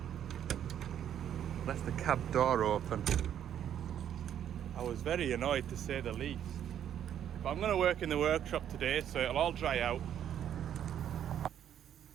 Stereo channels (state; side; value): quieter; left; 9.9 dB